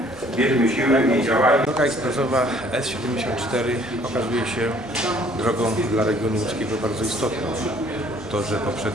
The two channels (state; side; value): normal; both; correlation 0.58